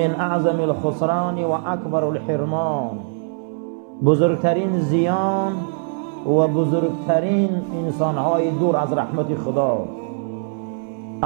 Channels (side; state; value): left; silent; 65 dB below the other